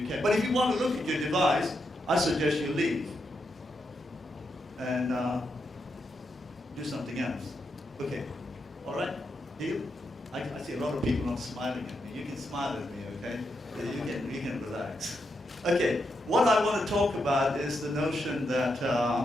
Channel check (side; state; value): both; normal; correlation 0.83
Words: can. But if you want to look at your device, I suggest you leave and do something else. Okay, all right, deal? I see a lot of people not smiling at me. You can smile at me, okay? You can relax. Okay, what I want to talk about is the notion that